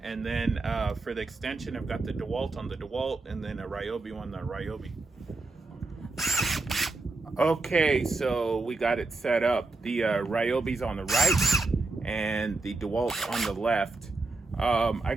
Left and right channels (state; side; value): quieter; left; 3.5 dB